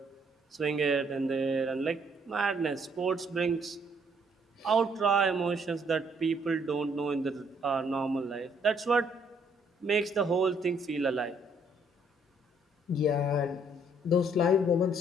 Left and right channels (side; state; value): both; normal; correlation 0.67